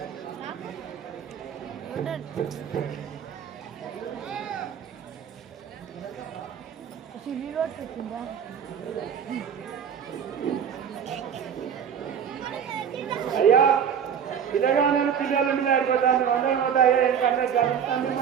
అయ్యా పిల్లగానే పిల్లలు మీద ఆడిపోతాను అందరం పోతాయి ఎందుకంటే తొమ్మిది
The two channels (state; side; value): quieter; left; 8.0 dB